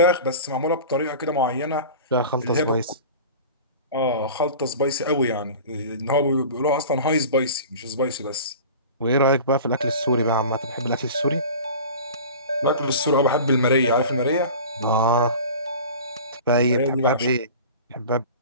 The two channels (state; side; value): inverted; both; correlation -0.37